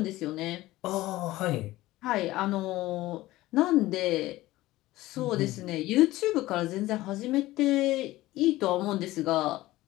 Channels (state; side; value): quieter; right; 17.3 dB